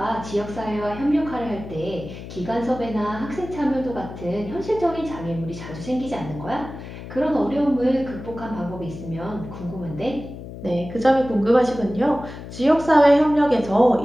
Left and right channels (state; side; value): noise; left; hum, 12 dB below the sound